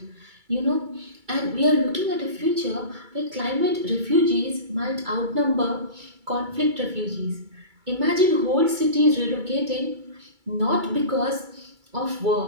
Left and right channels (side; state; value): left; late; 2.3 ms